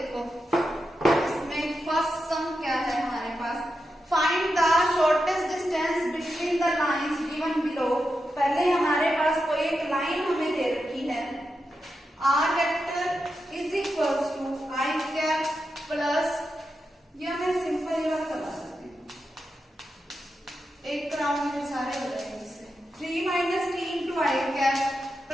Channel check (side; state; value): both; normal; correlation 0.88